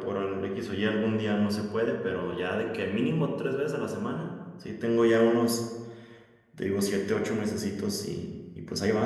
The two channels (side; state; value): both; identical; correlation 1.00